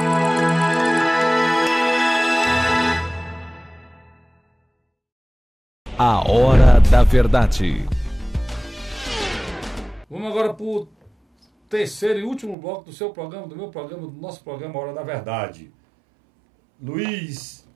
A Hora da Verdade. Vamos agora para o terceiro e último bloco do seu programa, do meu programa, do nosso programa Hora da Verdade. Luiz,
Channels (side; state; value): left; drops out; at 12.6 s